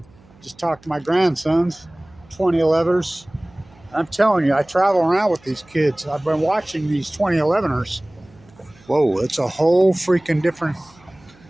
Just talked to my grandsons, 2011ers. I'm telling you, I travel around with these kids. I've been watching these 2011ers. Whoa, it's a whole freaking different...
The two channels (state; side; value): noise; right; hum, 28 dB below the sound